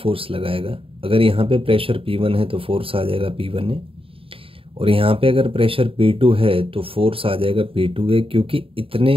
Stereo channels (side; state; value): left; late; 0.27 ms